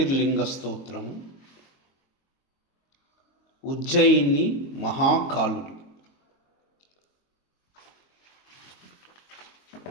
స్తోత్రం. ఉజ్జయిని మహాకాలుడు.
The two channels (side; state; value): right; late; 22 ms